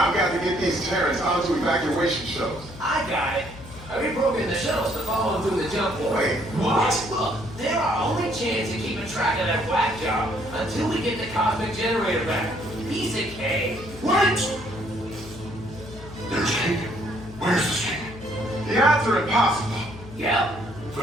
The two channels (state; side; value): noise; left; hum, 16 dB below the sound